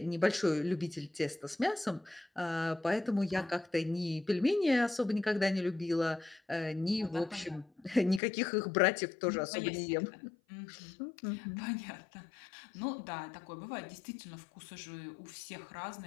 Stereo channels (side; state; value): right; drops out; at 8.2 s